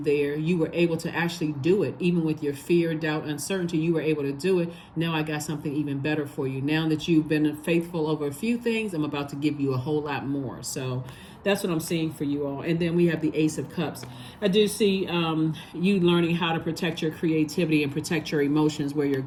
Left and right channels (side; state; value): both; identical; correlation 1.00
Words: You were able to actually do it. Even with your fear, doubt, uncertainty, you were able to do it. Now I got something even better for you. Now that you've been faithful over a few things, I'm about to give you a whole lot more. So that's what I'm seeing for you all. And then we have the Ace of Cups. I do see you learning how to protect your creativity and protect your emotions where you're